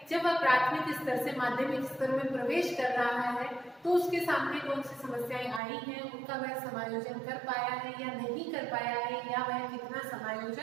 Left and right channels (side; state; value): left; drops out; at 5.6 s